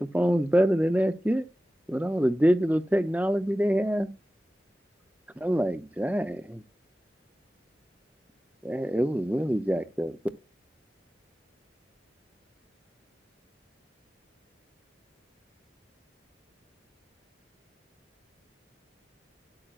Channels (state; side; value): normal; both; correlation 0.95